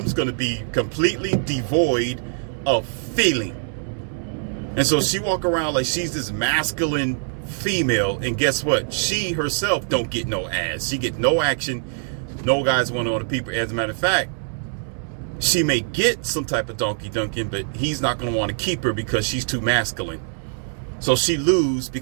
just going to be completely devoid of feeling. And so she walk around like she's this masculine female, and guess what? She herself don't get no ass. She get no action. No guys want to people. As a matter of fact, she may get some type of donkey dunking, but he's not going to want to keep her because she's too masculine. So she lose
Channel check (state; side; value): silent; left; digital silence